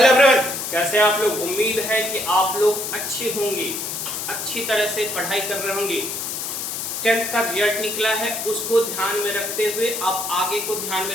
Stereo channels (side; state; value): left; noise; hiss, 4 dB below the sound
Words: everyone, कैसे आप लोग। उम्मीद है कि आप लोग अच्छे होंगे, अच्छी तरह से पढ़ाई कर रहे होंगे। 10th का रिजल्ट निकला है, उसको ध्यान में रखते हुए आप आगे को ध्यान में